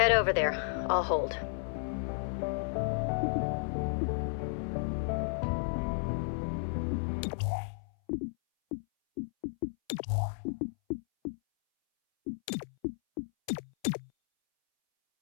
over there. I'll hold.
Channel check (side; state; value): right; silent; 56 dB below the other